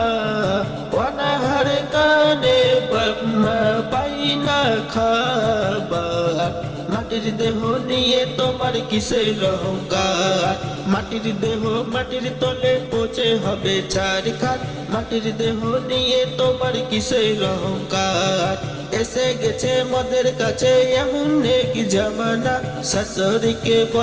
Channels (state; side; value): identical; both; correlation 1.00